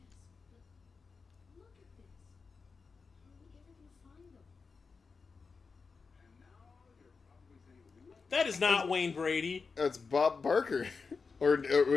That is not Wayne Brady. It's Bob Barker. Or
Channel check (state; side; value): quieter; right; 4.8 dB